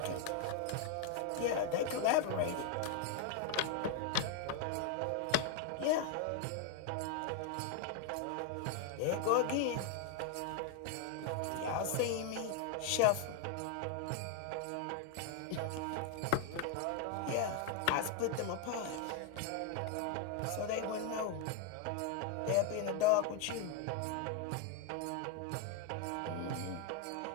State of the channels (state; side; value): different; both; correlation 0.00